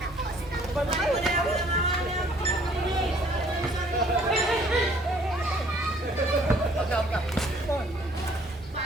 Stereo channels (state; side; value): normal; both; correlation 0.58